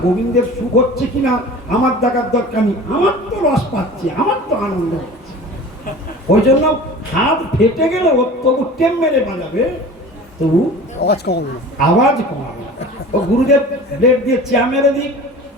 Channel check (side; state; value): both; normal; correlation 0.39